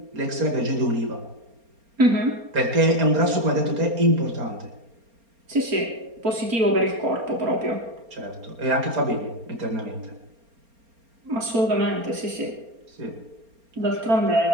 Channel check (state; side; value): late; left; 4.3 ms